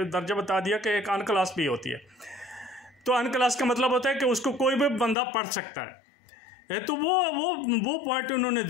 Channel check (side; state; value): right; drops out; at 5.2 s